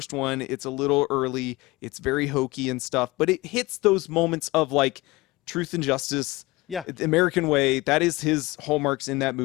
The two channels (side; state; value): right; quieter; 21.2 dB